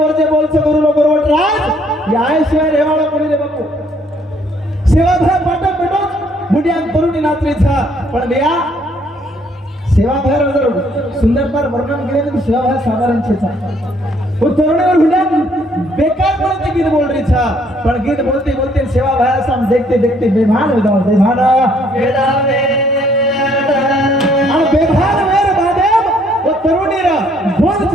बोलचे गुरु नो गुरु राज या शिवाय रेवाळा कोणी रे बापू सेवा भय पाटक पेटो बुढ़िया तरुणी नाचरी था पण बेया सेवा भय जर सुंदरता वर्णन केले तो सेवा भय साधारण छे था वो तरुणी और बुढ़िया बेकार बोलते गीत बोल रही था पण गीत बोलते बोलते सेवा भय हम देखते देखते बेभान हो जाओ बेभान और बेभान मेरे बादेव वो तरुणी रा बोल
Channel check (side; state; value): both; normal; correlation 0.65